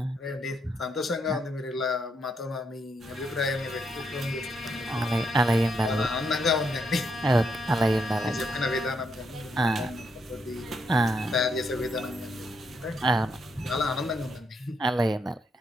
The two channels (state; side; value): normal; both; correlation 0.78